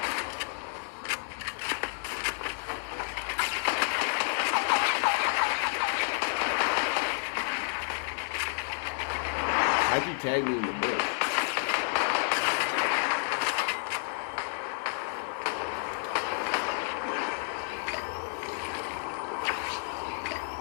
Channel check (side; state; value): right; silent; 58 dB below the other